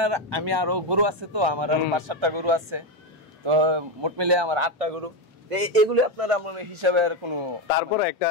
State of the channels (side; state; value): both; normal; correlation 0.10